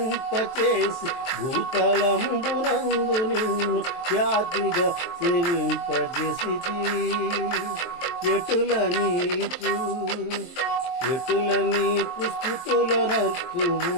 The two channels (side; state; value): right; late; 23 ms